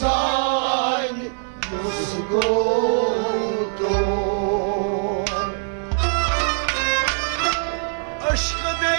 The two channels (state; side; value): silent; left; 55 dB below the other